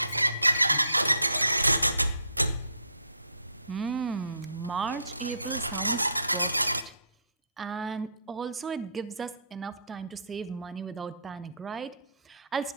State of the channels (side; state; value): both; inverted; correlation -0.64